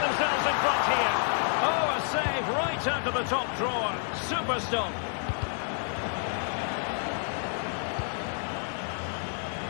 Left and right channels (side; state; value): right; silent; 58 dB below the other